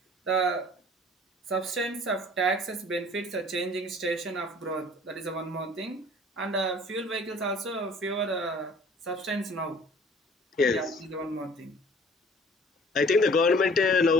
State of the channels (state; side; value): normal; both; correlation 0.51